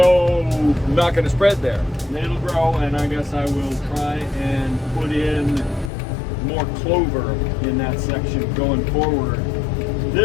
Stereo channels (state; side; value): drops out; right; at 5.9 s